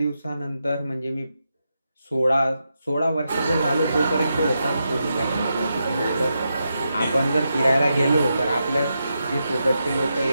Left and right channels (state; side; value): inverted; both; correlation -0.86